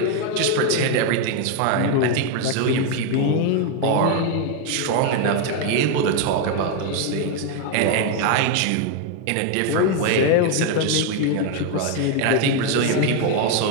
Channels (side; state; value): both; different; correlation 0.01